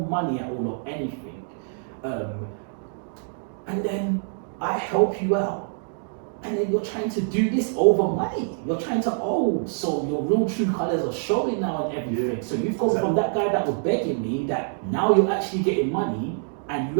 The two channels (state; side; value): silent; left; digital silence